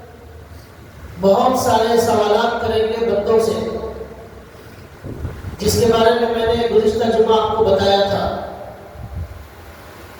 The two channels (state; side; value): identical; both; correlation 1.00